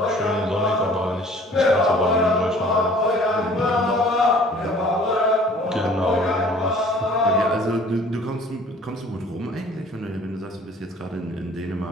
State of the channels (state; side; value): normal; both; correlation 0.51